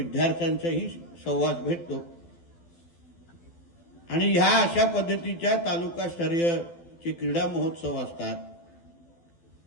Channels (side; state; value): right; late; 12 ms